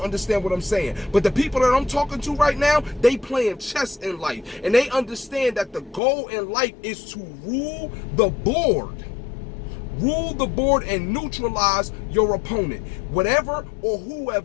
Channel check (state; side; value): drops out; right; at 6.0 s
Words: understand what I'm saying. But the people that I'm talking to right now, they playing chess in life, and they understand that the goal in life is to rule the board. Rule the board and neutralize your opponent. Whatever or